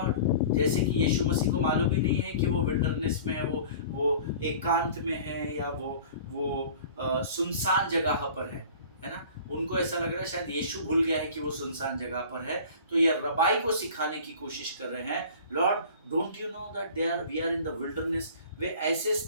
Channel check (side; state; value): both; inverted; correlation -0.43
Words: जैसे कि यीशु मसीह को मालूम ही नहीं है कि वो विल्डरनेस में है, वो एकांत में है या वो सुनसान जगह पर है ना? उनको ऐसा लग रहा है शायद यीशु भूल गया है कि वो सुनसान जगह पर है। तो ये रबाई को सिखाने की कोशिश कर रहे हैं, lord don't you know that we are in the wilderness. वे ऐसे